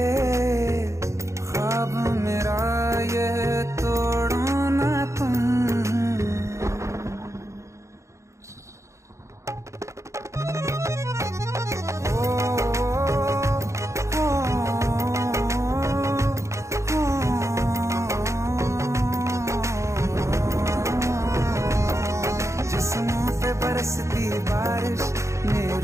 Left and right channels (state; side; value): late; left; 0.14 ms